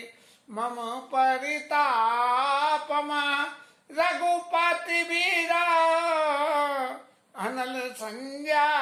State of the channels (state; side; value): identical; both; correlation 1.00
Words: मम परितापम, रघुपति वीरा अनल